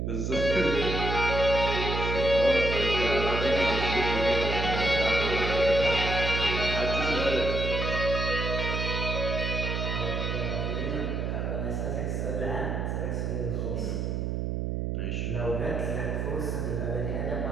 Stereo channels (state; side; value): noise; right; hum, 1 dB below the sound